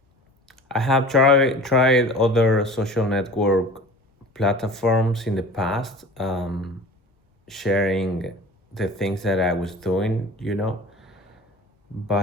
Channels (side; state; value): both; normal; correlation 0.40